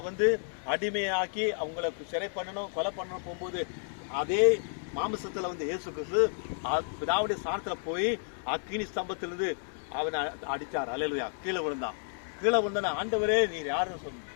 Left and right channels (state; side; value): silent; right; 57 dB below the other